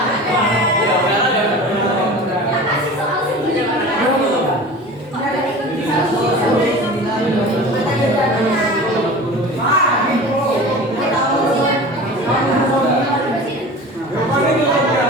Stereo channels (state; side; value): normal; both; correlation 0.36